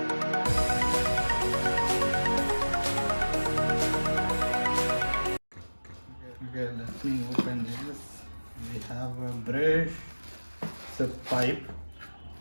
Okay, let me open this. We have a brush, it's a pipe,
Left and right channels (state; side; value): inverted; both; correlation -1.00